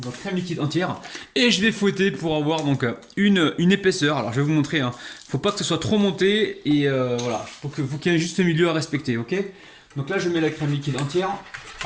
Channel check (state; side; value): identical; both; correlation 1.00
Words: et je vais fouetter pour avoir donc une épaisseur. Alors je vais vous montrer, hein. Faut pas que ce soit trop monté et voilà, faut qu'il y ait un juste milieu à respecter, ok? Donc là je mets la crème liquide entière.